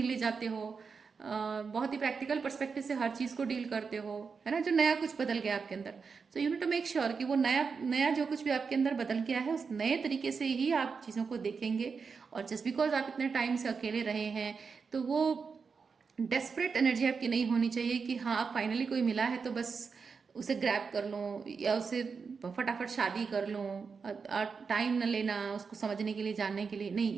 ले जाते हो। बहुत ही प्रैक्टिकल पर्सपेक्टिव से हर चीज़ को डील करते हो, है ना, जो नया कुछ बदल गया आपके अंदर। So you need to make sure कि वो नया जो कुछ भी आपके अंदर बदल गया है उस नए तरीके से ही आप चीज़ों को देखेंगे। और जस्ट बिकॉज आप इतने टाइम से अकेले रहे हैं तो वो डेस्परेट एनर्जी आपकी नहीं होनी चाहिए कि हाँ फाइनली कोई मिला है तो बस उसे ग्रैब कर लूँ या उसे फटाफट शादी कर लूँ और टाइम न लेना उसको समझने के लिए, जानने के लिए, नहीं,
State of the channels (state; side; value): quieter; left; 5.4 dB